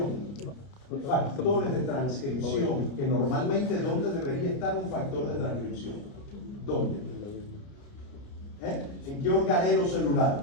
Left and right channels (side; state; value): right; late; 29 ms